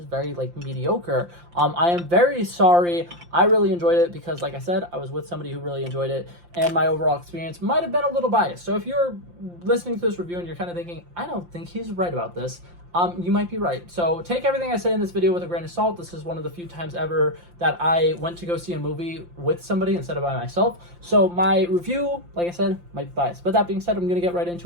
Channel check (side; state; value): left; late; 5.7 ms